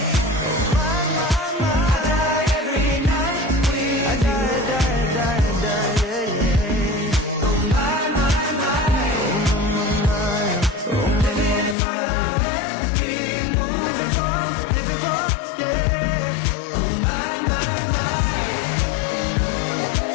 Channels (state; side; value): drops out; right; at 11.8 s